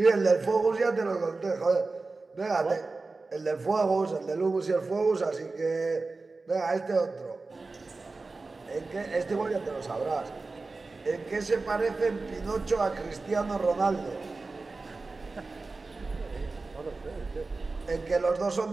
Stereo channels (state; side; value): quieter; left; 3.7 dB